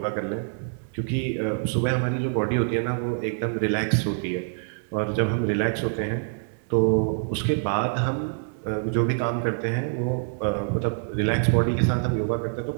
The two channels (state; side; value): silent; left; digital silence